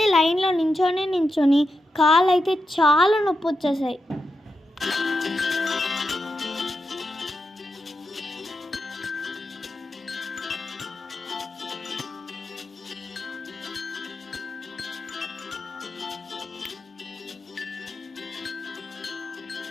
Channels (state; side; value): normal; both; correlation 0.88